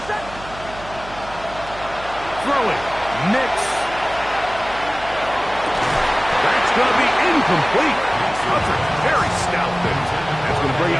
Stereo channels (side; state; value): right; noise; hum, 16 dB below the sound